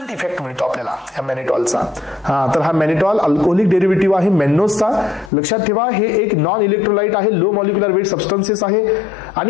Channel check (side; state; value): right; drops out; at 5.3 s